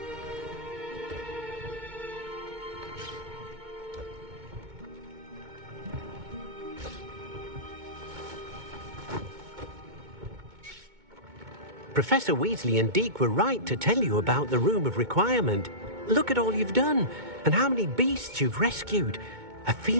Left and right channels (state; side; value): late; left; 2.2 ms